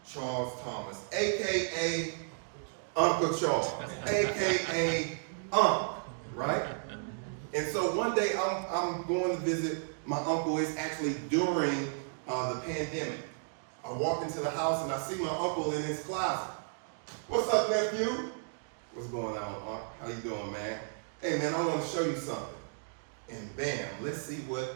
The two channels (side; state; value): left; silent; digital silence